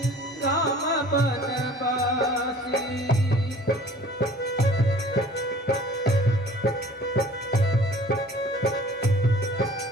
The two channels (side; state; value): both; normal; correlation 0.48